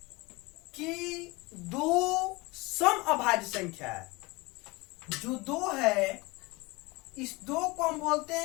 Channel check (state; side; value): quieter; right; 24.0 dB